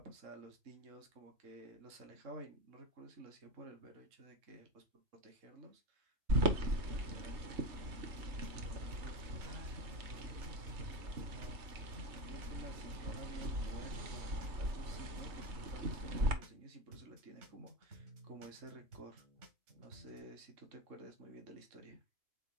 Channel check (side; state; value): left; late; 3.3 ms